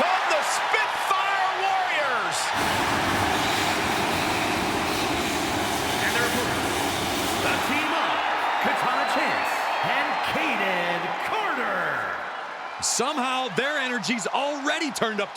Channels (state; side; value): identical; both; correlation 1.00